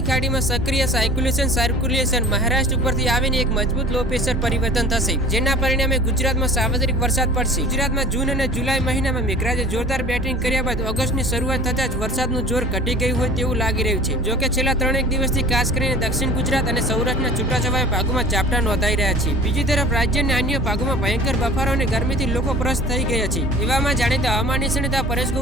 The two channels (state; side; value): normal; both; correlation 0.43